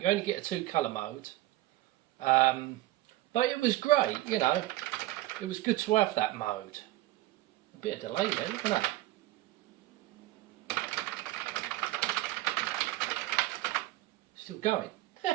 You only get a 2 colour mode. But it was great, you know. It was good to have that mode. A bit of delay there, look at that. Still going.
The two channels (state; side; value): quieter; left; 16.6 dB